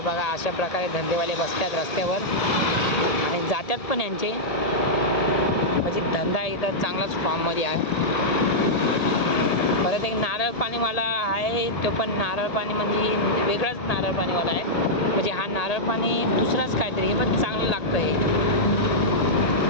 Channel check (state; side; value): late; right; 1.8 ms